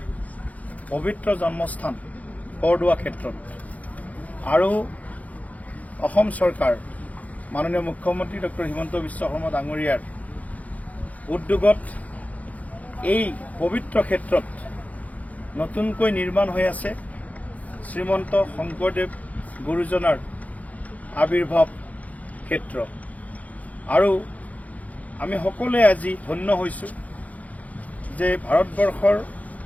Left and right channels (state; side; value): late; right; 0.072 ms